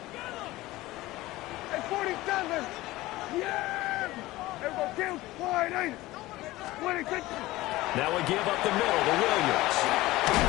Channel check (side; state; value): right; quieter; 18.1 dB